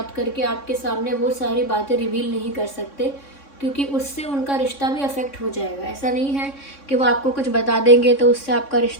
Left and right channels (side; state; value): right; late; 3.6 ms